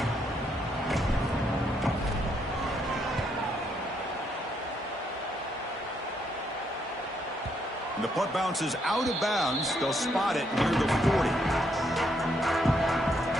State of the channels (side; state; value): both; normal; correlation 0.75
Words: The punt bounces out of bounds. They'll spot it near the 40.